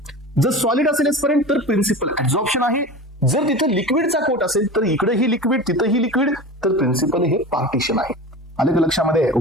जर सॉलिड असेल एस्पेरेंट तर प्रिन्सिपल ऍब्झॉर्प्शन आहे. जर तिथे लिक्विडचा कोट असेल तर इकडेही लिक्विड तिथेही लिक्विड, तर प्रिन्सिपल हे पार्टिशन आहे. आले का लक्षामध्ये?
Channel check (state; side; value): normal; both; correlation 0.31